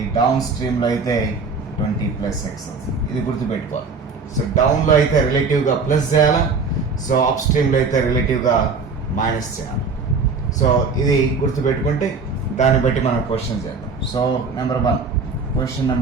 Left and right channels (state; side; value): quieter; left; 4.6 dB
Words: డౌన్ స్ట్రీమ్లో అయితే 20 + x అవుతుంది. ఇది గుర్తుపెట్టుకోవాలి. సో డౌన్లో అయితే రిలేటివ్గా ప్లస్ చేయాలా, సో అప్ స్ట్రీమ్లో అయితే రిలేటివ్గా మైనస్ చేయాలి. సో ఇది గుర్తుపెట్టుకుంటే దాన్ని బట్టి మనం క్వశ్చన్ చేద్దాం. సో క్వశ్చన్